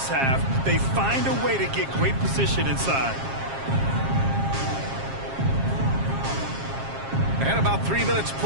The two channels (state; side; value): late; left; 7.4 ms